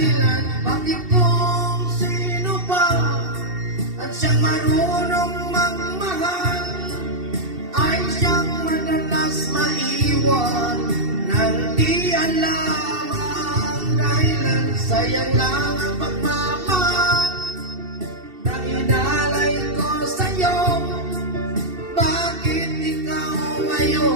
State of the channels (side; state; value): left; late; 2.7 ms